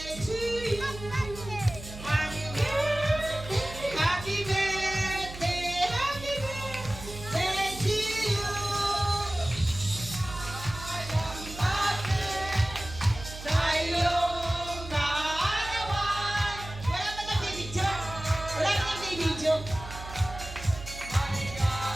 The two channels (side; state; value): right; noise; hum, 12 dB below the sound